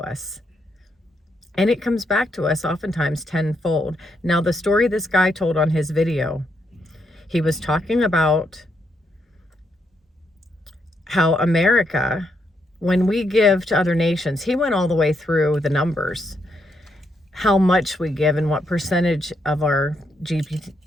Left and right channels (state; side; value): normal; both; correlation 0.78